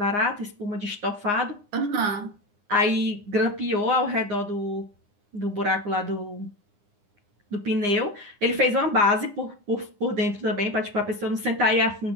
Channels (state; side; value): late; left; 9.8 ms